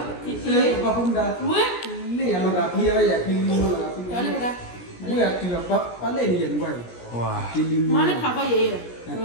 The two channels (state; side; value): late; right; 17 ms